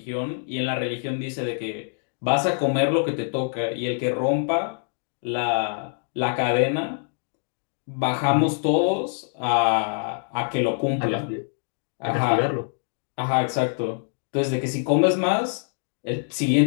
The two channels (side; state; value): right; silent; 62 dB below the other